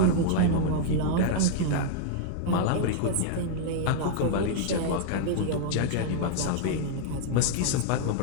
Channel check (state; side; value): different; both; correlation -0.01